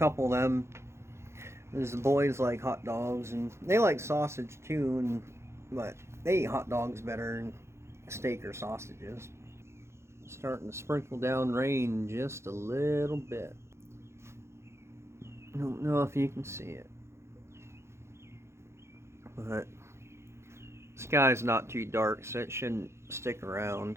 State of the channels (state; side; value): late; left; 0.13 ms